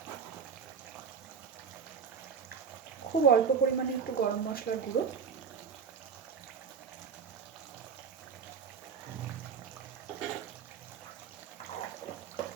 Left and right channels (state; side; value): quieter; left; 6.5 dB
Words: খুব অল্প পরিমাণে একটু গরম মশলার গুঁড়ো,